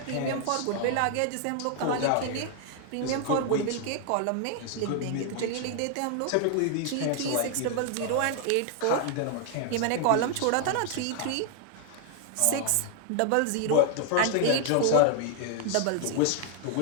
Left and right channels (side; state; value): both; different; correlation 0.00